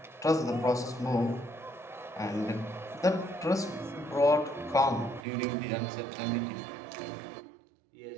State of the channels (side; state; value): left; drops out; at 5.2 s